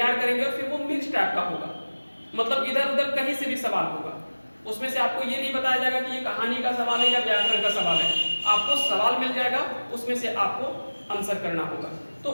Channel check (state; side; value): inverted; both; correlation -1.00